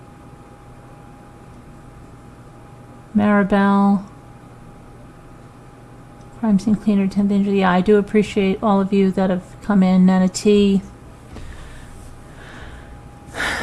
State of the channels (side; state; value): both; identical; correlation 1.00